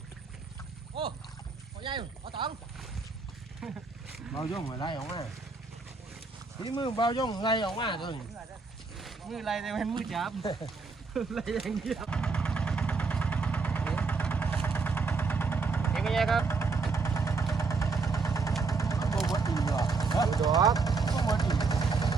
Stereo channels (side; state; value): left; quieter; 4.4 dB